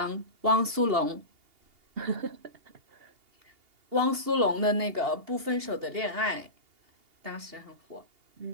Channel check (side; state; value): left; late; 2.8 ms